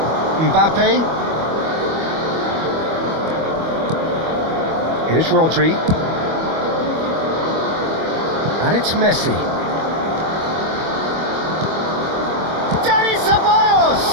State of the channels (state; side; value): late; left; 25 ms